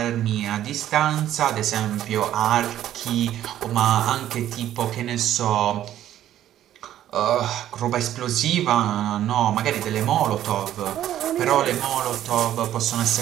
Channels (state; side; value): quieter; left; 12.1 dB